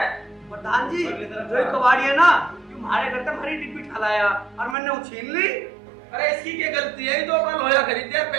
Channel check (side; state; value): left; drops out; at 4.8 s